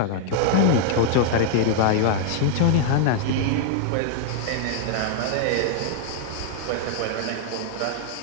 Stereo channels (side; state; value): both; different; correlation -0.01